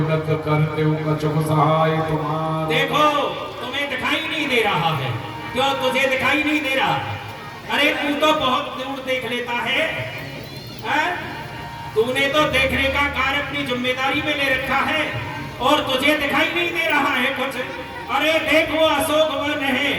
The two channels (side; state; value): both; identical; correlation 1.00